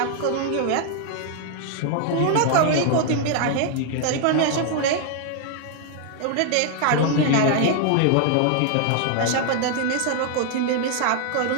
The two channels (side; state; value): both; different; correlation 0.00